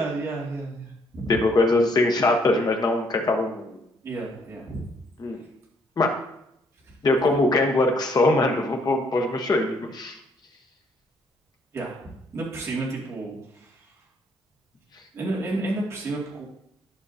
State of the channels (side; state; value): both; normal; correlation 0.68